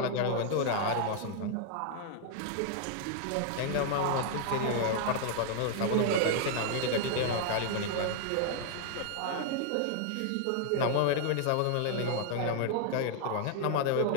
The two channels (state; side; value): different; both; correlation 0.00